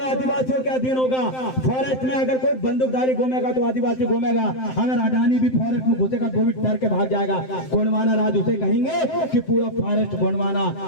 के अधीन होगा। फॉरेस्ट में अगर कोई बंदूकधारी घूमेगा तो आदिवासी घूमेगा, अगर अडानी भी फॉरेस्ट में घुसेगा तो भी डर के भाग जाएगा। गोंडवाना राज उसे कहेंगे कि पूरा फॉरेस्ट गोंडवाना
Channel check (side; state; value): right; late; 7.7 ms